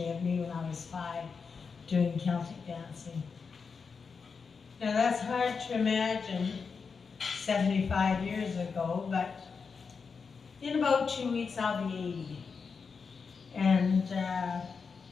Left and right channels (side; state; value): right; quieter; 5.4 dB